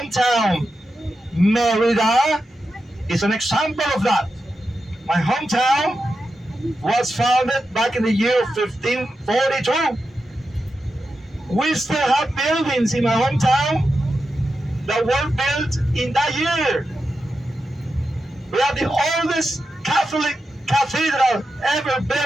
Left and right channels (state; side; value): normal; both; correlation 0.89